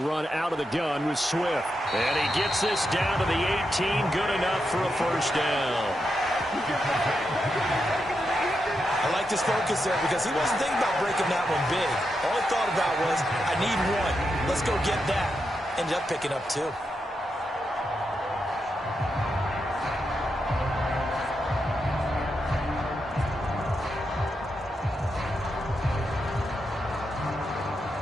out of the gun with Swift. And he gets this down to the 18. Good enough for a first down. I like this focus there because he wasn't thinking about breaking that one big. All he thought about was, I need one. Let's go get that. Ended up picking up 2.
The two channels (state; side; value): normal; both; correlation 0.85